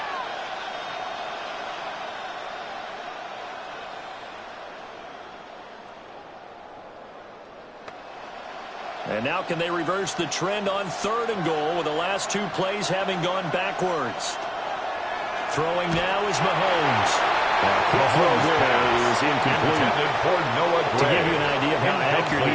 And now can they reverse the trend on 3rd and goal with the last 2 plays having gone backwards? Throwing now is Mahomes. Quick throw there is incomplete. To give you an idea of how accurate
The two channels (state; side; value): identical; both; correlation 1.00